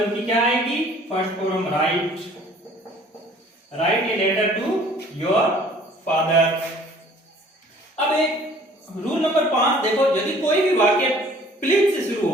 की क्या आएगी, first form, right. Right a letter to your father. अब एक रूल नंबर 5 देखो, यदि कोई भी वाक्य प्लीज से शुरू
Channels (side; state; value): both; normal; correlation 0.53